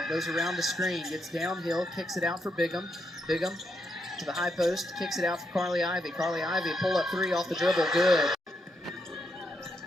goes around the screen, gets downhill, kicks it out for Bigham. Bigham to the high post, kicks it out for Carly Ivy. Carly Ivy, pull up three off the dribble, good.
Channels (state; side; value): normal; both; correlation 0.80